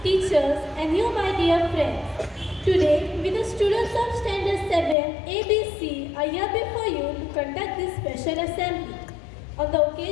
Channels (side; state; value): right; drops out; at 5.0 s